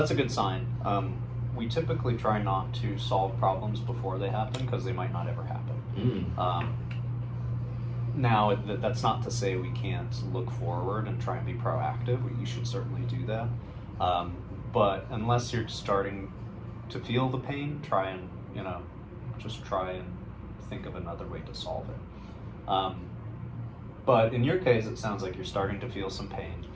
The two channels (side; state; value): both; identical; correlation 1.00